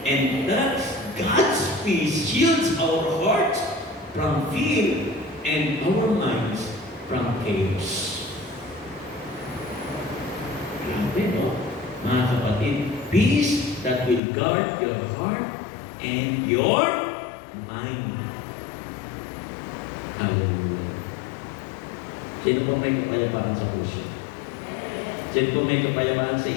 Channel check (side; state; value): right; drops out; at 14.2 s